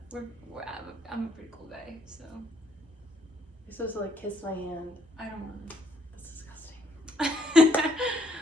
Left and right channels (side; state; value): both; normal; correlation 0.70